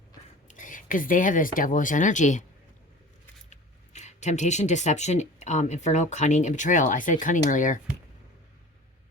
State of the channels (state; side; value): normal; both; correlation 0.40